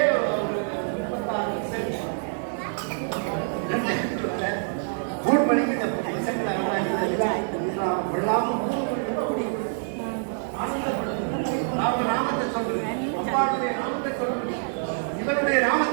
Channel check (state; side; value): silent; left; digital silence